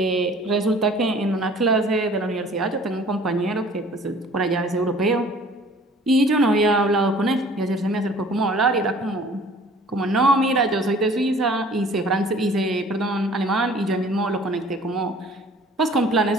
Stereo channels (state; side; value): normal; both; correlation 0.51